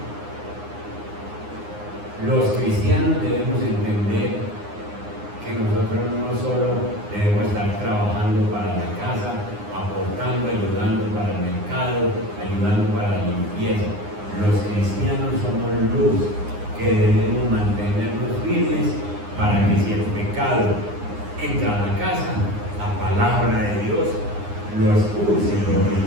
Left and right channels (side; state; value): left; late; 9.7 ms